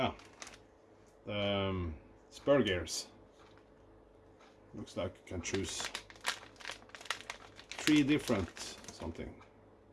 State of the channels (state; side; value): identical; both; correlation 1.00